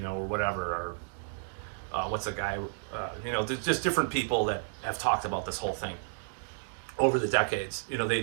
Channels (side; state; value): left; silent; digital silence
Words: whatever, or what's a guy, there's just different people that have talked about this whole thing over the decades.